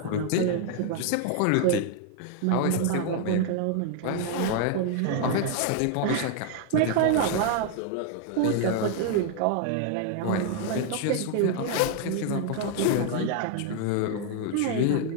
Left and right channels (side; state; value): both; different; correlation 0.00